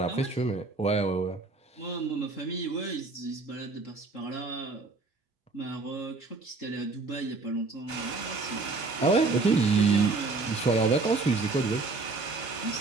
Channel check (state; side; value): quieter; left; 3.7 dB